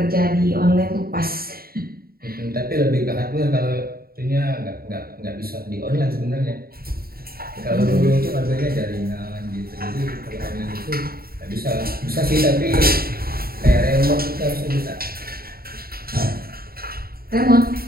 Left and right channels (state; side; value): late; left; 0.43 ms